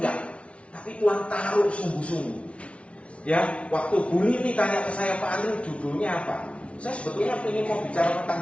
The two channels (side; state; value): right; late; 0.061 ms